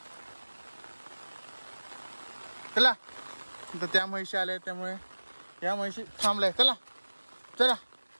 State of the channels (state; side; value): inverted; both; correlation -1.00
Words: चला, तर त्या म्हशी आल्या त्यामुळे या म्हशी थांबलाय. चला चला.